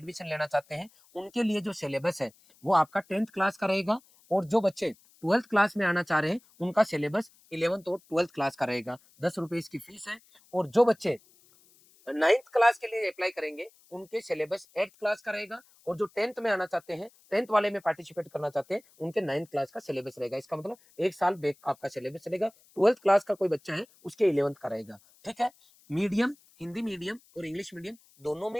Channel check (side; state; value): left; noise; hiss, 29 dB below the sound